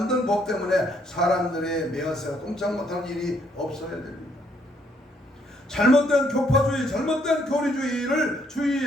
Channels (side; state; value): both; normal; correlation 0.70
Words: 법 때문에 사람들의 매어서 꼼짝 못하는 일이 없어야 됩니다. 잘못된 교파주의, 잘못된 교리주의를